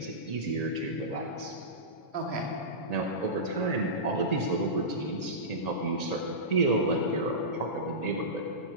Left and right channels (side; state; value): right; late; 7.0 ms